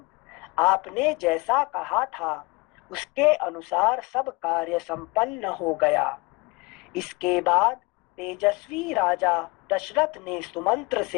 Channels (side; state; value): right; quieter; 26.1 dB